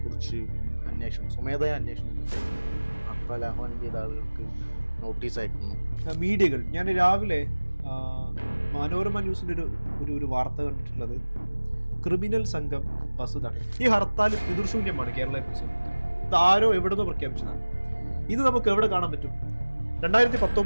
കുറിച്ച് സ്വമേധയാ അന്വേഷണം ഹർത്താൽ ആഹ്വാനം ചെയ്ത ആളുകൾക്ക് നോട്ടീസ് അയക്കുന്നു. മീഡിയകൾ ഞാൻ രാവിലെ മനോരമ ന്യൂസിൻ്റെ ഒരു വാർത്ത കണ്ടിട്ടുള്ളത്, ക്രിമിനൽ സംഘം ബസ് തടയും. ഈ ഹർത്താൽ പിതൃശൂന്യമാണ് കേരളത്തെ കുറിച്ച്. ഇത് ആരോ എവിടുന്നോ പ്രഖ്യാപിച്ചതാണ്. ഇത് നമുക്ക് എവിടെ കാണാൻ പറ്റും?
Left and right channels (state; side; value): inverted; both; correlation -1.00